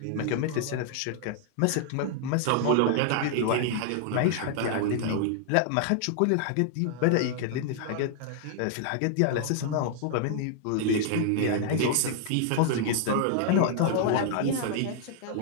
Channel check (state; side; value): different; both; correlation 0.00